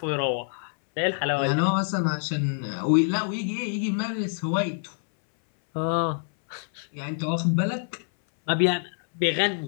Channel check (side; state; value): right; silent; 61 dB below the other